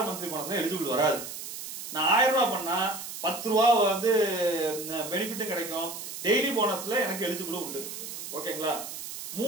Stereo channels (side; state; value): right; noise; hiss, 9 dB below the sound